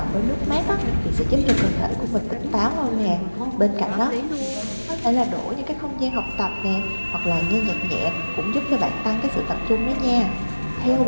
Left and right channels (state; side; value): inverted; both; correlation -1.00